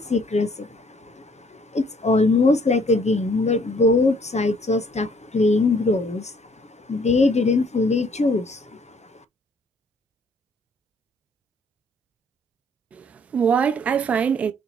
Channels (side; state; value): both; normal; correlation 0.62